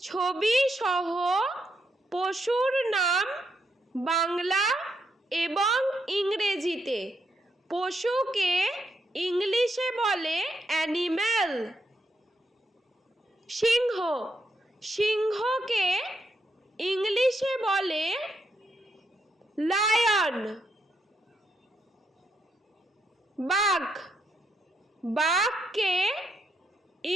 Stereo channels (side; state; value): both; normal; correlation 0.80